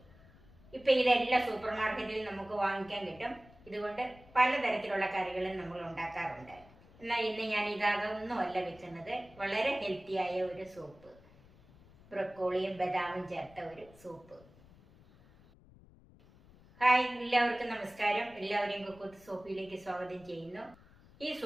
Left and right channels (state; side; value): noise; left; rumble, 24 dB below the sound